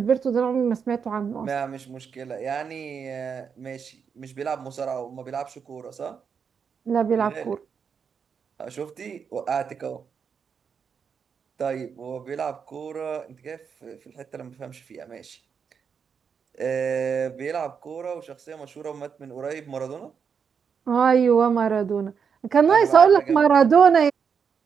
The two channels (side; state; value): left; quieter; 6.6 dB